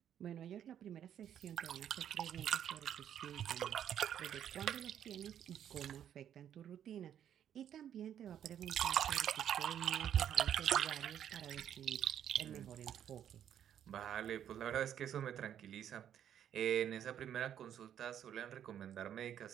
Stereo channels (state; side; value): quieter; left; 9.9 dB